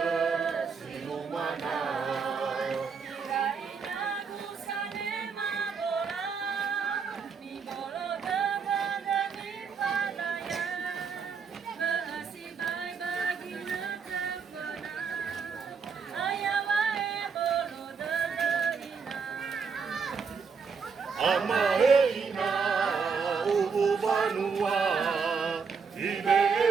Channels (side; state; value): left; quieter; 5.7 dB